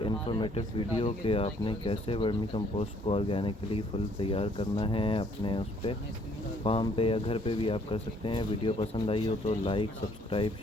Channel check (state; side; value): normal; both; correlation 0.63